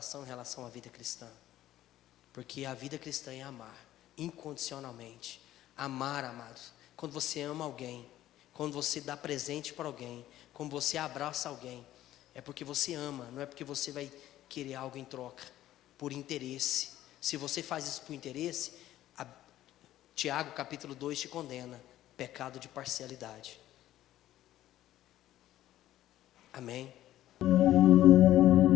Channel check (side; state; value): right; quieter; 13.7 dB